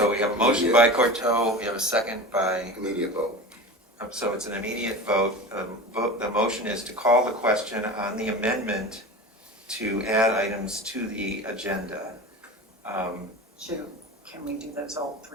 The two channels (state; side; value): normal; both; correlation 0.31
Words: we have a motion by Corto, we have a second by, Immediate vote. so it's an immediate vote. The motion is to call the question on the amendment to add items to the agenda. Can we do those all